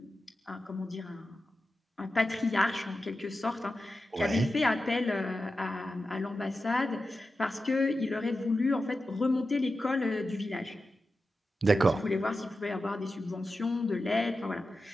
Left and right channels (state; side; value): normal; both; correlation 0.92